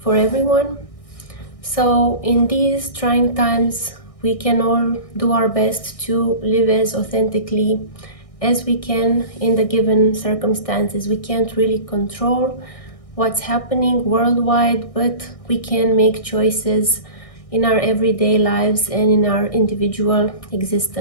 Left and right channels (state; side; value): late; right; 1.6 ms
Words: for everyone. So, in these trying times, we can all do our best to live as authentically as we can in the given circumstances. We can't really control what's happening worldwide, but we can make choices in our everyday lives and in our individual